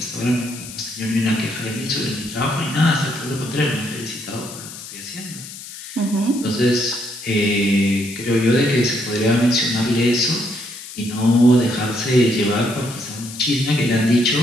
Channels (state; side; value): noise; left; hiss, 13 dB below the sound